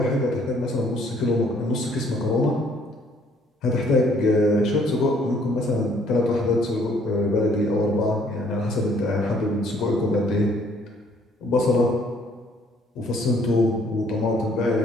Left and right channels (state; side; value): normal; both; correlation 0.63